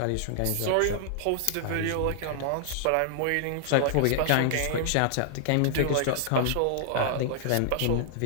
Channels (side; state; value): both; different; correlation -0.01